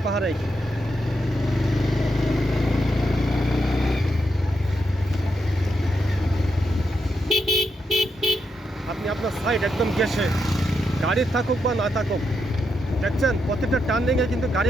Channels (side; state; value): both; normal; correlation 0.82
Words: পাহাড়েই। আপনি আপনার সাইড একদম গেছে, গাড়ি থাকুক বা না থাকুক, দেখছেন প্রত্যেকটা টার্নিংয়ে কিন্তু গাড়ি